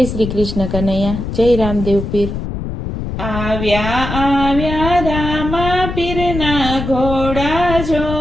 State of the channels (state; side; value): noise; left; rumble, 5 dB below the sound